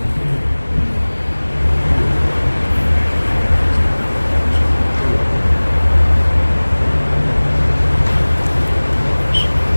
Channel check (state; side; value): inverted; both; correlation -1.00